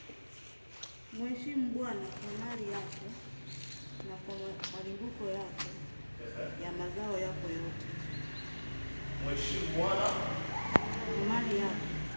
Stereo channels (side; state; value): both; inverted; correlation -1.00